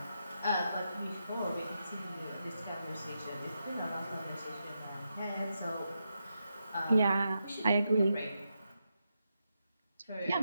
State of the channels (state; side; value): inverted; both; correlation -0.86